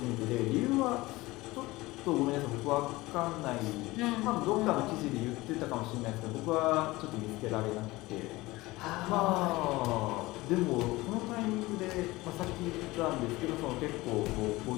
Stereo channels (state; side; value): quieter; right; 20.2 dB